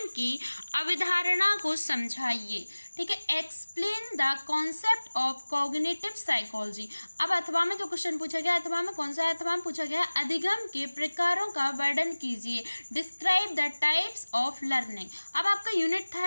की अवधारणा को समझाइए। ठीक है, explain the concept of cognitive psychology. अब अथवा में जो क्वेश्चन पूछा गया, अथवा में कौन सा है, अथवा में पूछा गया है अधिगम के प्रकारों का वर्णन कीजिए, describe the types of learning. अब आपका यूनिट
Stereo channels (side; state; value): both; inverted; correlation -1.00